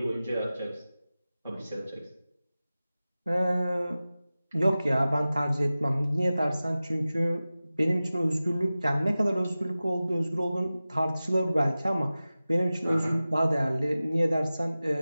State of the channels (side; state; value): both; inverted; correlation -0.96